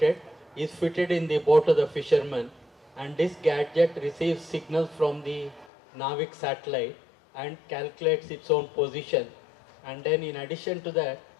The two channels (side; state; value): right; drops out; at 5.7 s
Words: is fitted in the boat of the fisherman, and this gadget receives signals from the NAVIC satellite and calculates its own position. And then in addition to that,